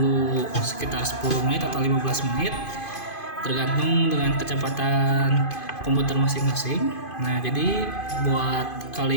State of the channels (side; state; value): right; late; 2.5 ms